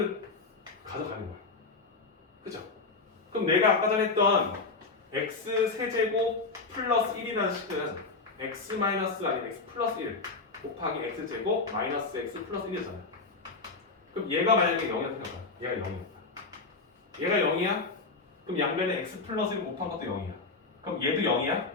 가져가는 거야. 그죠? 그럼 내가 아까 전에 했던 x 세제곱 플러스 1이라는 식은 x 마이너스 아니면 x 플러스 1 곱하기 x제곱 마이너스 x 플러스 1이잖아. 그럼 얘가 만약에 0이라고 생각해봐. 얘가 0이었다. 얘가 0이야? 그럼 양변에 x 플러스 1 곱한 것도 0이야. 그럼 얘도 0이야?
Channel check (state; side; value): quieter; right; 4.0 dB